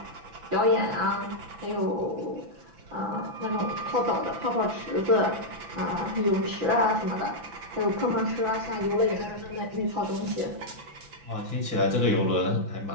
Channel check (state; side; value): late; left; 6.0 ms